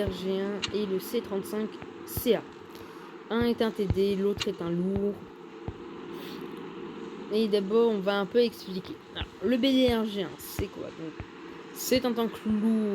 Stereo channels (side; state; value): both; identical; correlation 1.00